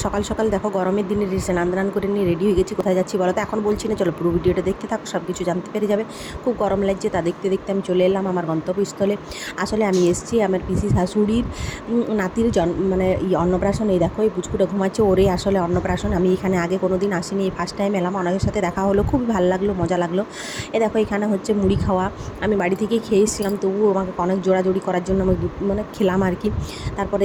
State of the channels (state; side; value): identical; both; correlation 1.00